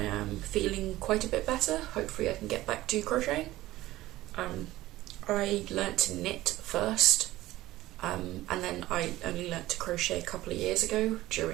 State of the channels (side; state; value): left; quieter; 16.5 dB